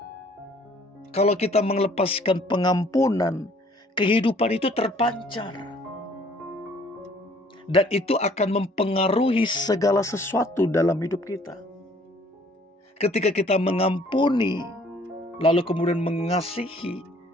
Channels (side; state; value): both; normal; correlation 0.58